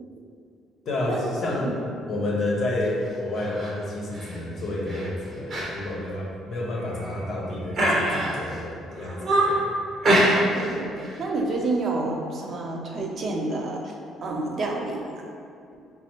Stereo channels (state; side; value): normal; both; correlation 0.67